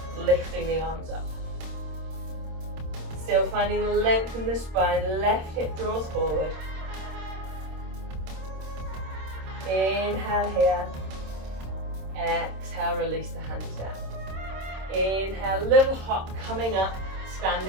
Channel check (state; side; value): late; left; 26 ms